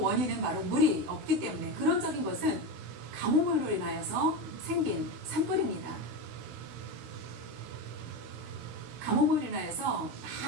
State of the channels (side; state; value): left; late; 15 ms